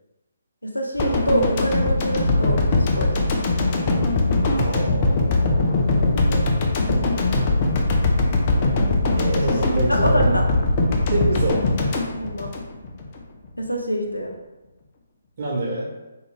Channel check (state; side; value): inverted; both; correlation -0.75